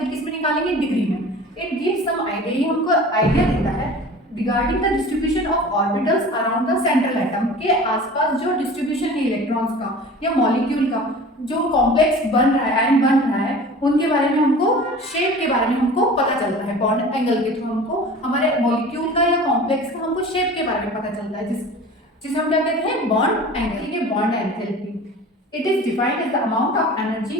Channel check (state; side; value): normal; both; correlation 0.40